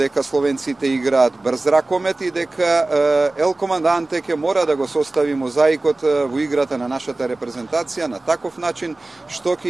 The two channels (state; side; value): quieter; left; 3.0 dB